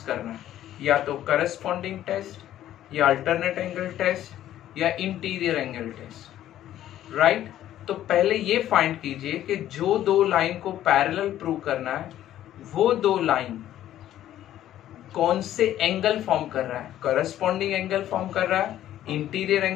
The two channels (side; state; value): right; quieter; 12.4 dB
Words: करना है, या तो करस्पॉन्डिंग टेस्ट या अल्टरनेट एंगल टेस्ट या इंटीरियर एंगल टेस्ट। राइट, तो पहले ये फाइंड कीजिए कि जो दो लाइन को पैरेलल प्रूव करना है वो दो लाइन कौन से एंगल फॉर्म कर रहा है, करस्पॉन्डिंग एंगल फॉर्म कर रहा है, इंटीरियर